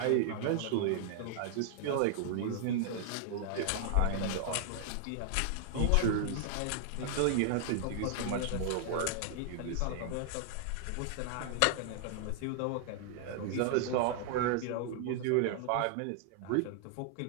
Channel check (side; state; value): both; different; correlation 0.00